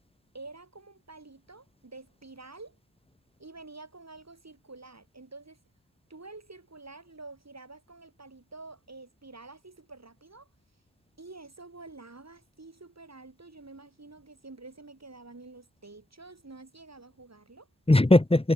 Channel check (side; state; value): both; normal; correlation 0.82